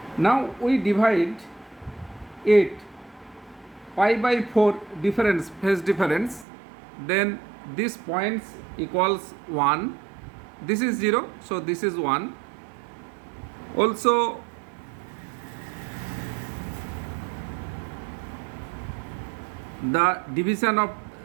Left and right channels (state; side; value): drops out; left; at 6.5 s